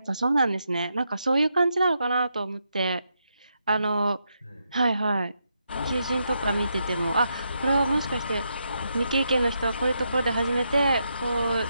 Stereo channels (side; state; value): both; inverted; correlation -0.82